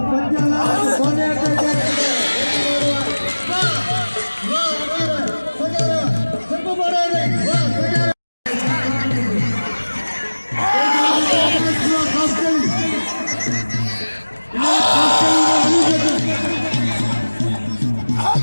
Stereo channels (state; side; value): inverted; both; correlation -1.00